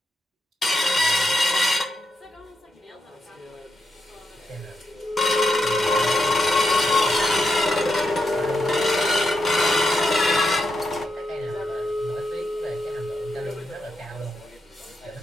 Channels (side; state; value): both; normal; correlation 0.83